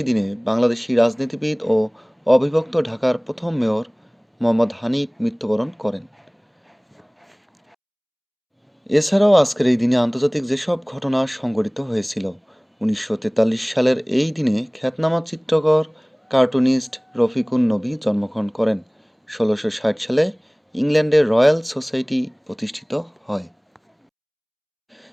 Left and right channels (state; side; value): identical; both; correlation 1.00